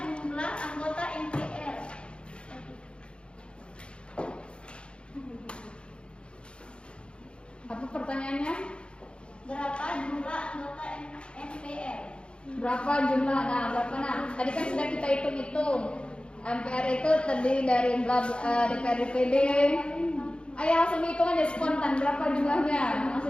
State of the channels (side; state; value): right; late; 0.056 ms